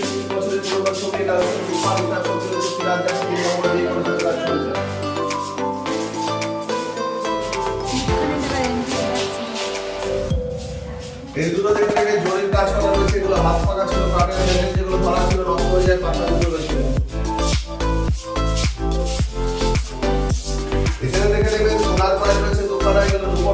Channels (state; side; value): identical; both; correlation 1.00